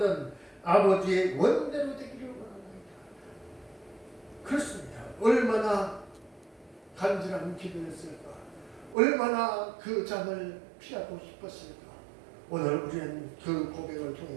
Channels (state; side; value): drops out; left; at 9.0 s